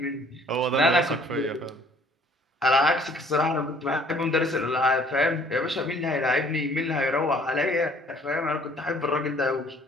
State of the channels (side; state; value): both; normal; correlation 0.57